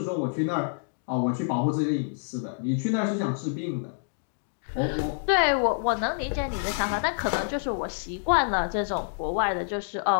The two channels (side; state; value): right; silent; digital silence